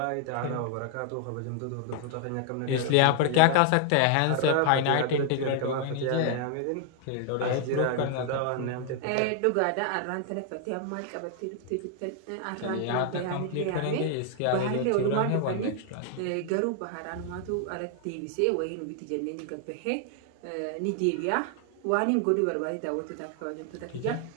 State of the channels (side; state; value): both; different; correlation 0.00